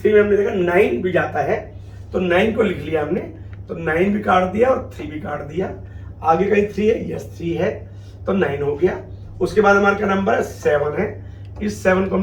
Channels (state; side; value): identical; both; correlation 1.00